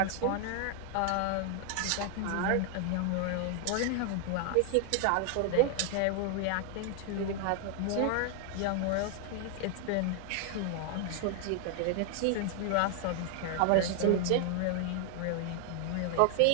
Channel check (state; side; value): different; both; correlation 0.00